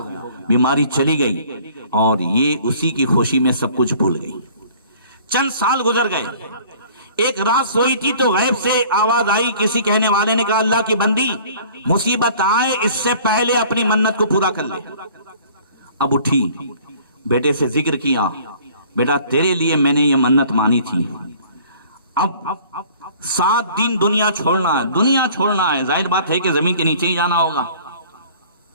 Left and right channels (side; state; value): both; inverted; correlation -0.51